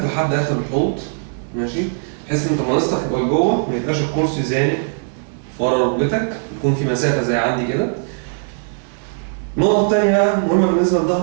لحد آخر الحوض، ماشي؟ بحيث إن أنت مناصتك تبقى لجوه، ما يبقاش الكرسي زانق ورا ركبتك، يكون في مسافة زي عندي كده. النقطة التانية بقى مهمة بالنسبة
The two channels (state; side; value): silent; left; digital silence